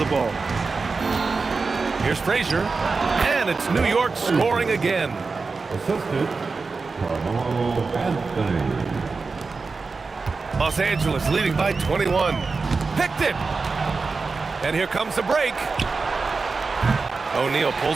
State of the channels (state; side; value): quieter; left; 4.3 dB